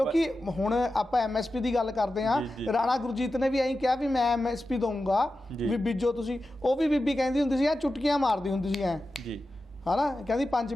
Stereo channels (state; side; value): normal; both; correlation 0.92